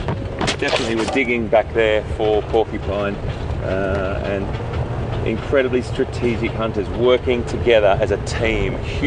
definitely were digging back there for porcupine, and incredibly strategic hunters working together as a team,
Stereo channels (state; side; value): identical; both; correlation 1.00